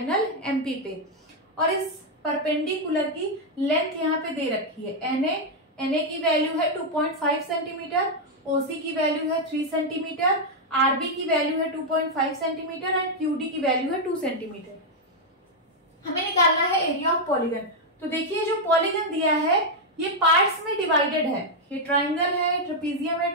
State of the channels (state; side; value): normal; both; correlation -0.01